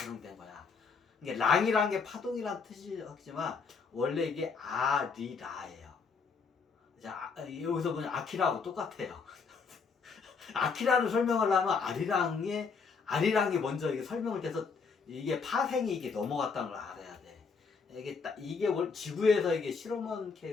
거야. 이게 랑이란 게 파동이란 뜻이지만 원래 이게 아리라예요. 자, 여기서 보면 아키라하고 똑같아요. 아키라를 설명하려면 아리랑이 먼저 이게 설명을 돼서 이게 파생이 이게 넘어갔다는 걸 알아야 돼. 이게 지구에서 이게 실험한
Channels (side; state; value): right; quieter; 5.2 dB